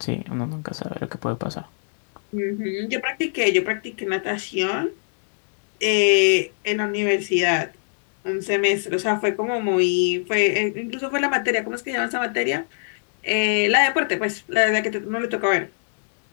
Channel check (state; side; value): silent; right; digital silence